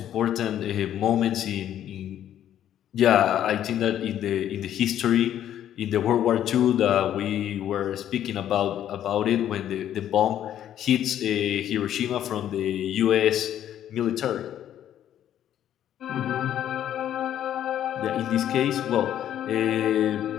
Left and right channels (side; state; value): right; quieter; 11.0 dB